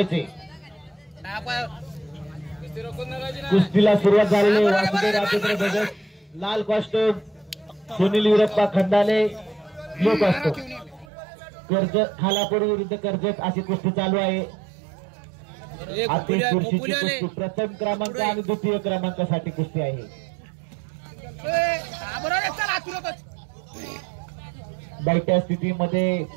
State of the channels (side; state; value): left; drops out; at 11.1 s